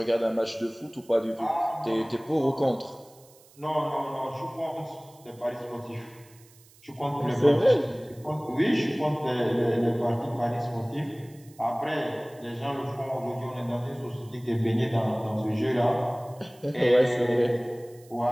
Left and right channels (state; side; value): noise; right; hiss, 26 dB below the sound